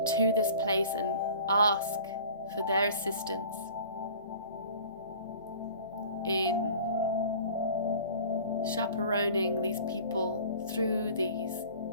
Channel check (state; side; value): inverted; both; correlation -0.44